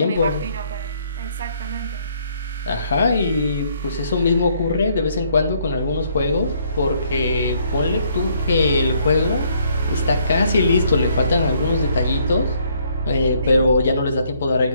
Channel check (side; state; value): both; inverted; correlation -0.68